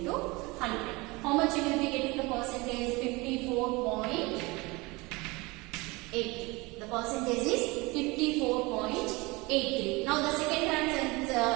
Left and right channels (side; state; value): left; quieter; 24.2 dB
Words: 100. How much you will be getting the percentage? 54.8. The percentage is 54.83. Now the